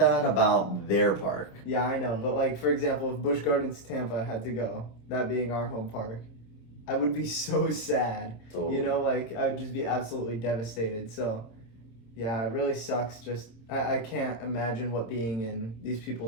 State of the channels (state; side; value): late; right; 26 ms